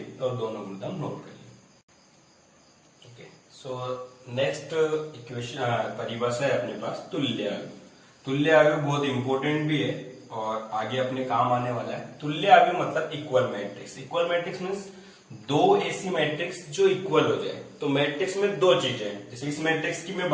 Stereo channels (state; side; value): identical; both; correlation 1.00